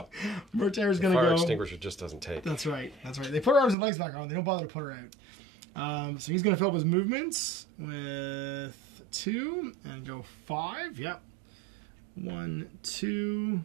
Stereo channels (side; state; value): left; drops out; at 3.8 s